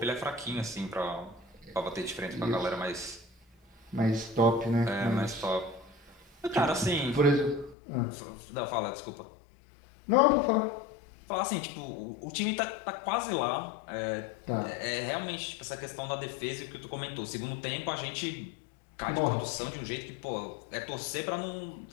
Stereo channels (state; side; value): drops out; right; at 7.8 s